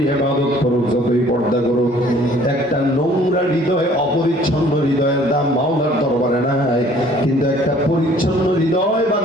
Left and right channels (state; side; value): normal; both; correlation 0.55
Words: ইবাদত করুক, যতই পর্দা করুক, একটা নোংরা হৃদয়, অপরিচ্ছন্ন হৃদয়ের দাম মাওলার দরবারে নাই। কিন্তু একটা পরিচ্ছন্ন হৃদয়বান